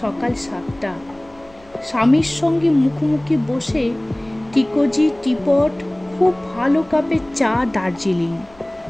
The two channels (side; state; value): left; noise; hum, 27 dB below the sound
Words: 7টা, স্বামীর সঙ্গে মুখোমুখি বসে টিকোজি টিপট, খুব ভালো কাপে চা, দার্জিলিং।